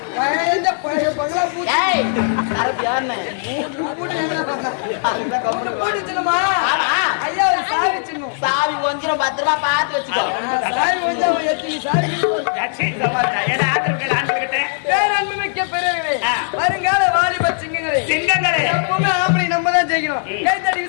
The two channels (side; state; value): right; silent; digital silence